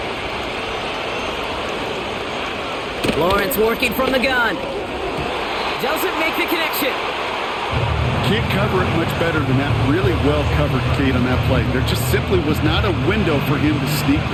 Lawrence working from the gun. Doesn't make the connection. Can't cover it much better than that. Really well covered, Kate, on that play. There just simply was not a window for him to sneak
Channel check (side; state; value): both; identical; correlation 1.00